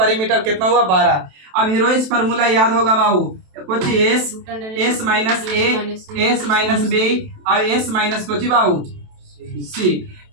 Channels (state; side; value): late; left; 27 ms